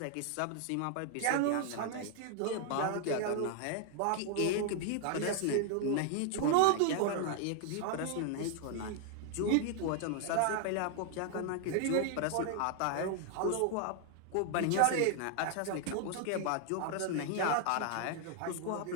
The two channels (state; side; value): different; both; correlation 0.00